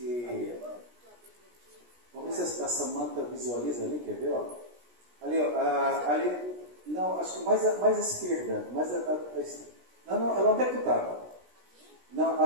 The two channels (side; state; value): left; late; 17 ms